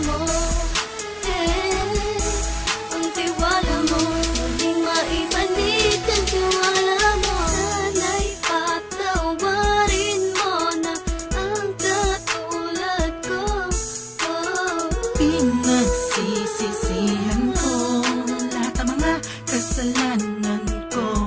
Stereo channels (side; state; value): both; identical; correlation 1.00